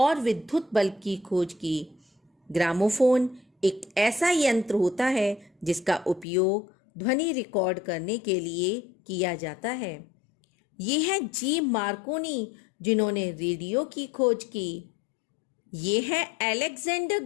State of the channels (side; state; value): right; drops out; at 6.2 s